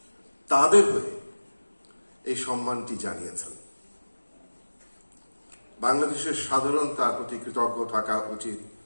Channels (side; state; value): both; inverted; correlation -1.00